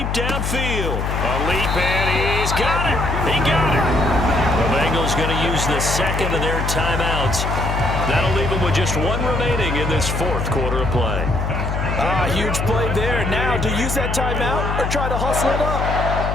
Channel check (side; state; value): left; noise; hum, 1 dB below the sound